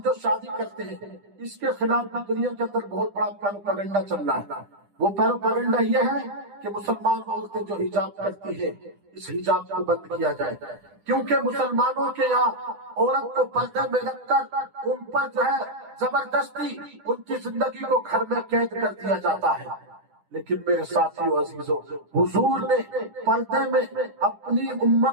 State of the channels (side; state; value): left; late; 10 ms